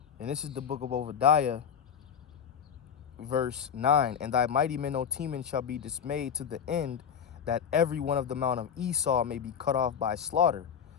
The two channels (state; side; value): quieter; right; 7.7 dB